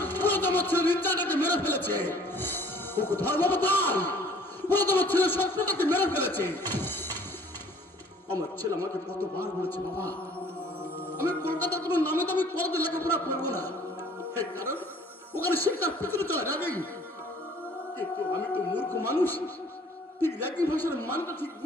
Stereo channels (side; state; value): both; normal; correlation 0.54